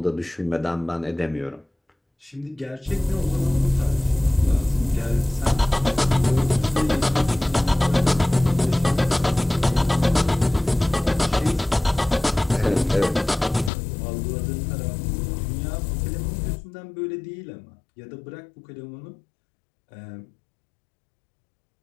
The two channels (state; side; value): drops out; right; at 13.7 s